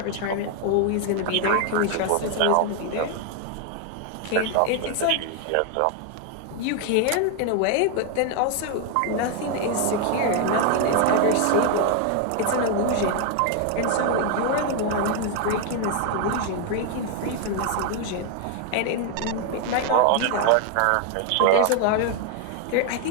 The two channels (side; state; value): both; different; correlation 0.01